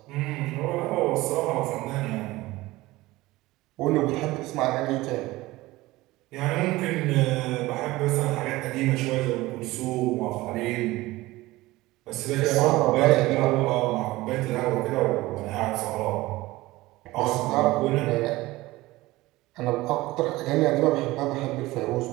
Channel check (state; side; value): quieter; left; 19.0 dB